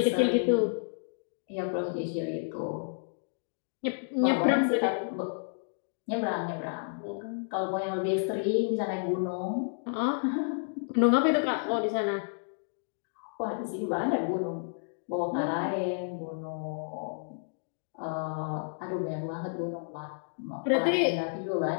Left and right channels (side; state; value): right; silent; digital silence